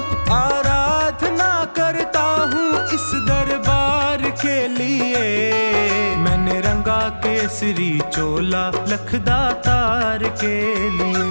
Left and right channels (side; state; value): both; inverted; correlation -1.00